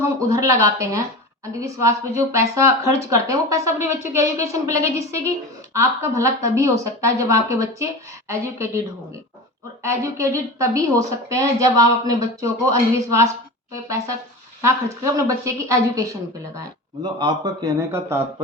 उधर लगाते हैं, अंधविश्वास पे जो पैसा खर्च करते हैं, वो पैसा अपने बच्चों के एजुकेशन पे लगे, जिससे कि आपका भला तभी हो सकता है जब आपके बच्चे एजुकेटेड होंगे। और एजुकेटेड तभी हो सकते हैं जब आप अपने बच्चों को अंधविश्वास पे पैसा ना खर्च करके अपने बच्चे की एजुकेशन पे लगाएं। मतलब आपका कहने का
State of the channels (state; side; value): normal; both; correlation 0.30